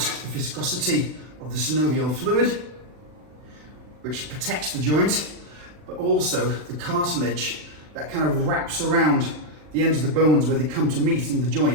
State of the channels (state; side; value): late; left; 39 ms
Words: viscosity of the synovial fluid, which protects the joint, but also the cartilage that kind of wraps around the ends of the bones where they come to meet in the